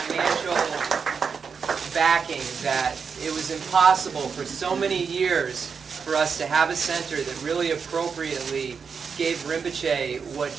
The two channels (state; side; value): quieter; left; 5.9 dB